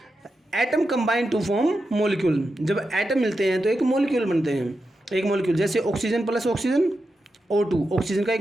Atom combine to form molecule. जब एटम मिलते हैं तो एक मॉलिक्यूल बनते हैं। एक मॉलिक्यूल, जैसे oxygen plus oxygen O2, oxygen का एक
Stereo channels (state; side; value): normal; both; correlation 0.88